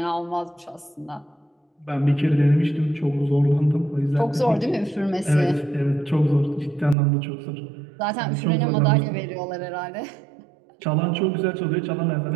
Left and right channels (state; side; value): drops out; left; at 7.0 s